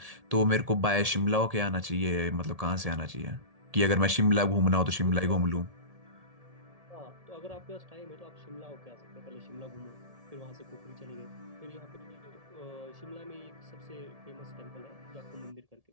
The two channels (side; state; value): left; late; 1.7 ms